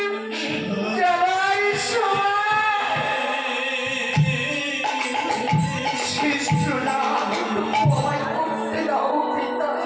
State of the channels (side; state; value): both; identical; correlation 1.00